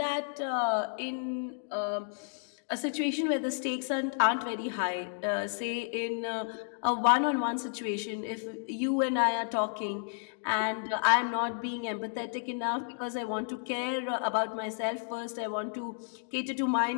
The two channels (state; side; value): silent; right; digital silence